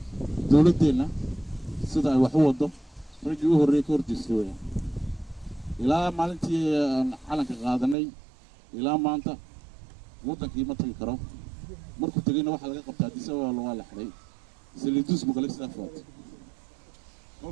dowladdeena sida ay wax u wado raggii u horreeyay ka horjeestay weeyaan ilaa maalintii aan calanka qaadanay ilaa maanta wadankii ma tagi karo markuu tagayna waxa laga qabtaa Addis Ababa waa la xiray saliidus muqallis safaad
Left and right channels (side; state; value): left; drops out; at 8.0 s